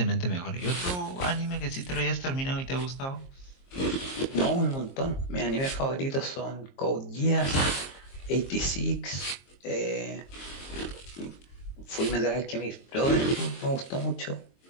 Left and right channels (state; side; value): late; right; 22 ms